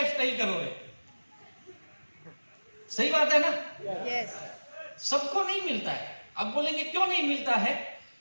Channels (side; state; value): both; inverted; correlation -1.00